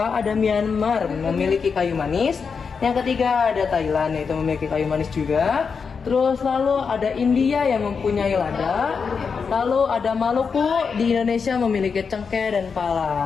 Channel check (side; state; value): right; quieter; 5.7 dB